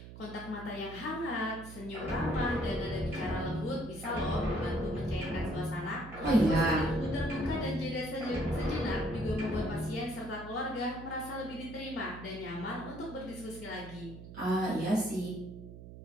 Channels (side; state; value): right; noise; hum, 14 dB below the sound